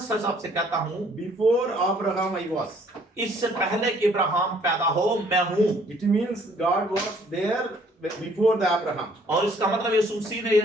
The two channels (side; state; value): both; normal; correlation 0.61